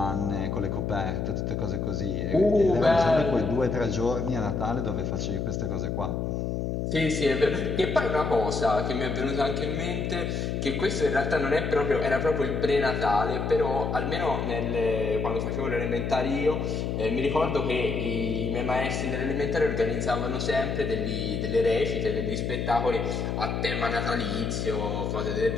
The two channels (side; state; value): left; noise; hum, 1 dB below the sound